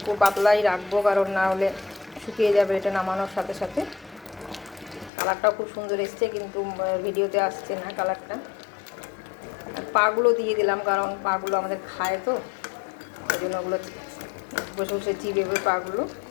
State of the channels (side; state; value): right; drops out; at 5.1 s